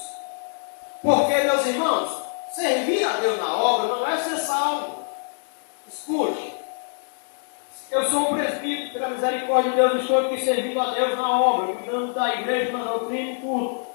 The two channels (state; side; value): silent; right; digital silence